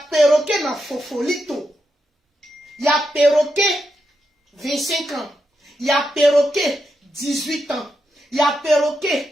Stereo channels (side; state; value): both; normal; correlation 0.85